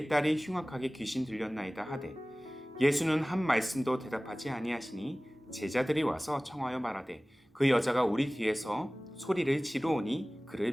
딸이 흉악하게 귀신 들렸나이다 하되 예수는 한 말씀도 대답하지 아니하시니 제자들이 와서 청하여 말하되 그 여자가 우리 뒤에서 소리를 지르오니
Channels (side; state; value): both; normal; correlation 0.98